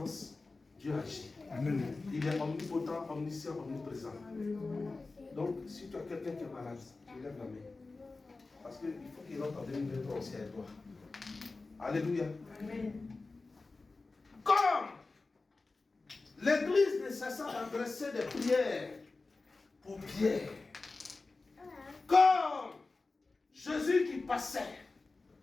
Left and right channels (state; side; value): quieter; right; 3.6 dB